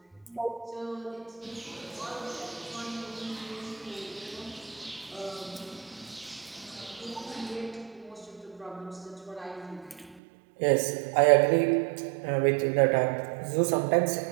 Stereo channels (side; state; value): left; drops out; at 10.2 s